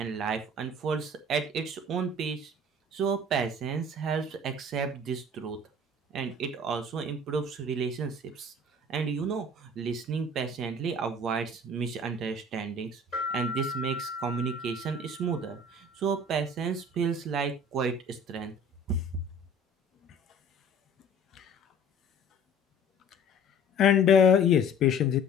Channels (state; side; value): normal; both; correlation 0.47